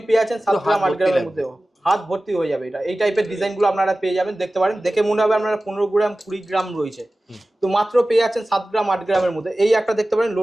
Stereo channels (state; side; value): normal; both; correlation 0.96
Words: পেয়ে যাচ্ছেন 7 গ্রাম 8 গ্রামের মধ্যে, হাত ভর্তি হয়ে যাবে। এটা এই টাইপের ডিজাইনগুলো আপনারা পেয়ে যাবেন, দেখতে পারেন। দেখে মনে হবে আপনারা 15 গ্রাম 20 গ্রাম রয়েছে, তো মাত্র পেয়ে যাচ্ছেন 7 গ্রাম 8 গ্রামের মধ্যে। এই একটা দেখতে পারেন